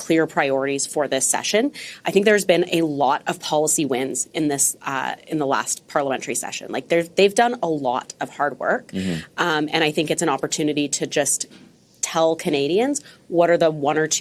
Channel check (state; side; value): identical; both; correlation 1.00